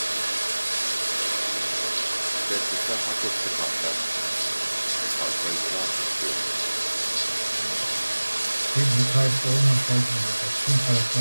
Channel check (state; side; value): inverted; both; correlation -1.00